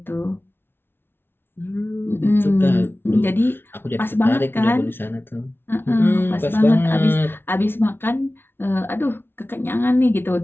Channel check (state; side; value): late; right; 0.11 ms